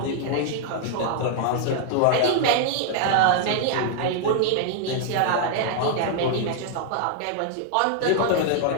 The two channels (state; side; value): different; both; correlation 0.00